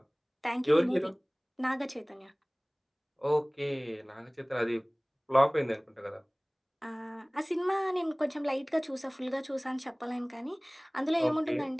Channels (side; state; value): both; identical; correlation 1.00